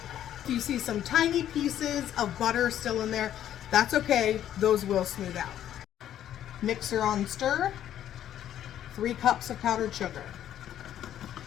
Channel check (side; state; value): right; quieter; 11.1 dB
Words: If you see some tiny pieces of butter still in there, that's okay. Those will smooth out. Mixer on stir. 3 cups of powdered sugar.